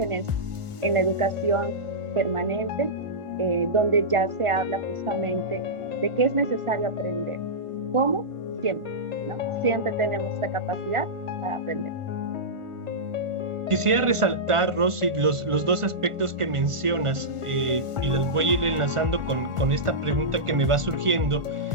en la educación permanente, donde ya se habla justamente de que es necesario aprender. ¿Cómo? Siempre, ¿no? Siempre tenemos esta capacidad para aprender. Quisiera resaltar, Rosy, los dos aspectos que mencionas, y los voy a ir enlazando con esta pregunta que me va surgiendo.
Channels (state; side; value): late; left; 1.4 ms